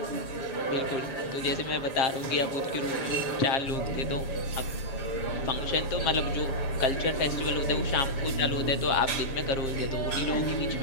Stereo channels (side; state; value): right; late; 7.3 ms